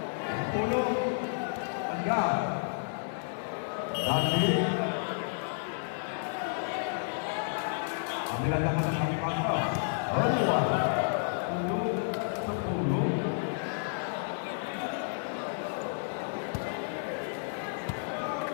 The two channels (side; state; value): right; silent; digital silence